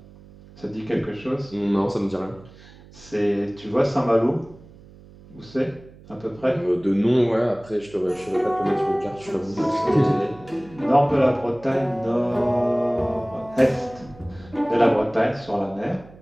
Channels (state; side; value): noise; right; hum, 22 dB below the sound